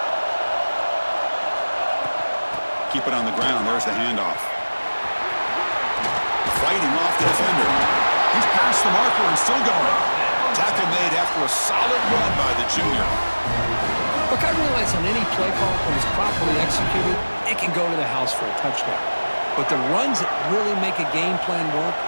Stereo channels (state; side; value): inverted; both; correlation -1.00